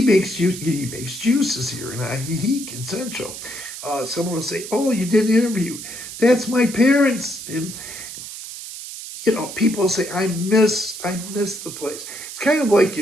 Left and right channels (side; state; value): right; noise; hiss, 10 dB below the sound